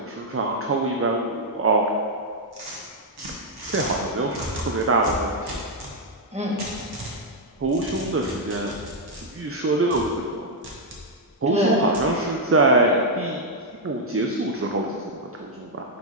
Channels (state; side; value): normal; both; correlation -0.03